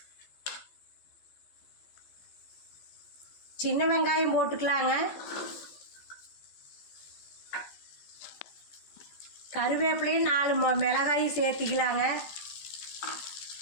சின்ன வெங்காயம் போட்டுக்கலாங்க. கருவேப்பிலையும் 4 மிளகாய் சேர்த்திக்கலாங்க.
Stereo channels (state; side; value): late; right; 14 ms